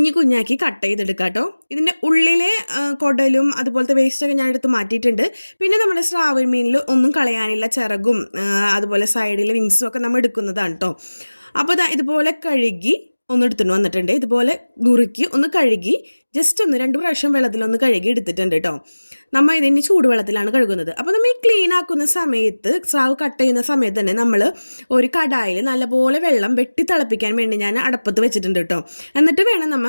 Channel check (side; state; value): both; inverted; correlation -1.00